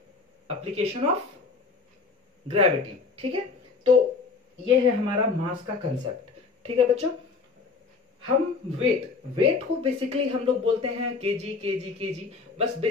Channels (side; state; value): right; quieter; 4.5 dB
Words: application of gravity, ठीक है। तो ये है हमारा मास का कंसेप्ट, ठीक है बच्चों। हम वेट को बेसिकली हम लोग बोलते हैं केजी केजी केजी। बस